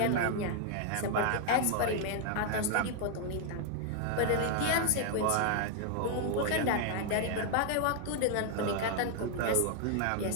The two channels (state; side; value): different; both; correlation 0.00